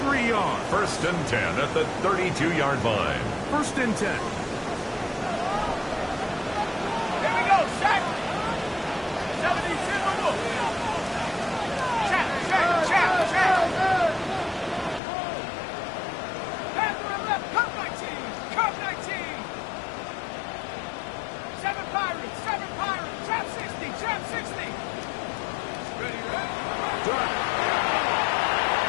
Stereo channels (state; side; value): drops out; right; at 15.0 s